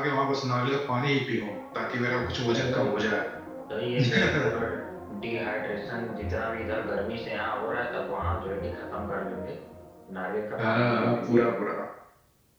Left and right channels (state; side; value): identical; both; correlation 1.00